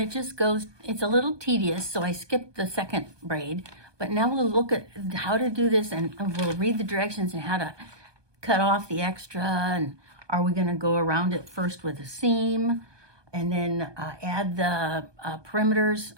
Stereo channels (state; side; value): late; left; 1.2 ms